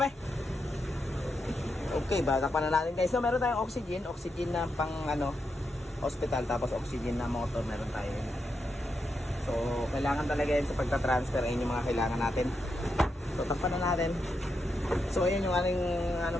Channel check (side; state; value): both; normal; correlation 0.84